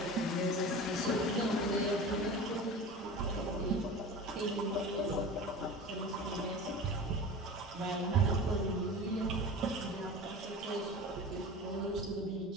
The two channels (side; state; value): both; normal; correlation 0.34